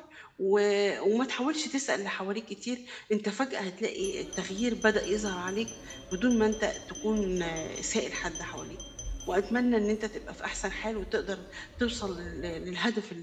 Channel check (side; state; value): both; identical; correlation 1.00